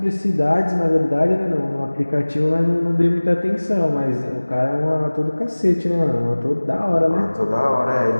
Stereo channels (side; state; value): both; inverted; correlation -1.00